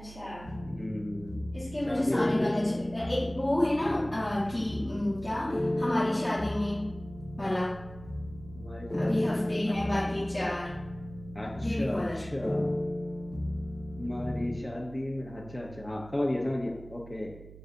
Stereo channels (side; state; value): right; noise; hum, 17 dB below the sound